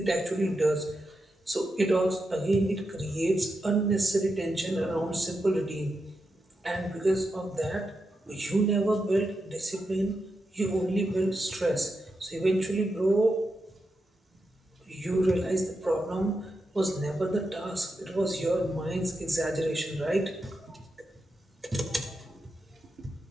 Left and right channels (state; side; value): normal; both; correlation 0.87